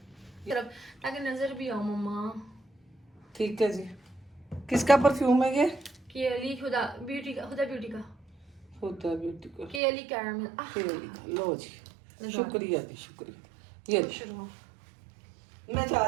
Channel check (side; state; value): left; drops out; at 9.8 s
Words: तरफ, ताकि नजर भी आओ मम्मा। ठीक है जी। किसका परफ्यूम है ये? केली खुदा ब्यूटी का, खुदा ब्यूटी का होता है ब्यूटी का। केली कैरामल। लो जी, शुक्रिया जी, शुक्रिया। ये जी। शुरू मैं जा